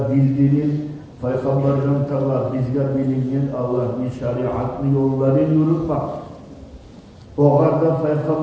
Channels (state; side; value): identical; both; correlation 1.00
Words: bildirip, Peygamber'den Teala bizge bilinen Allah'ın şeriatlı yolları yürütmek. O kadar